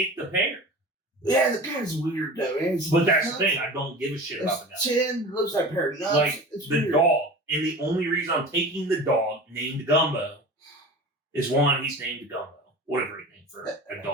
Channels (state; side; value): normal; both; correlation 0.36